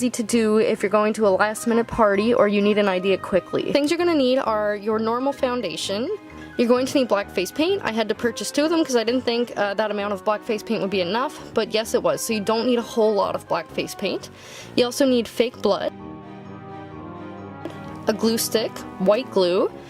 to do if you're going to a last minute party or you need an idea quickly. Things you're going to need are your normal foundation. You're going to need black face paint. I had to purchase 2 of them because I didn't think that amount of black face paint would be enough, but yes it was, so you don't need a whole lot of black face paint. You also need fake blood, a glue stick, white glue.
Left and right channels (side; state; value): both; identical; correlation 1.00